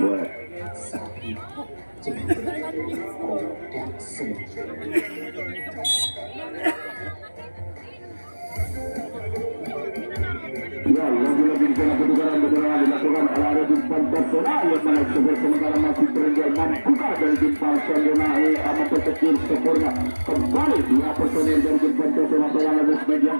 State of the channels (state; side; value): inverted; both; correlation -1.00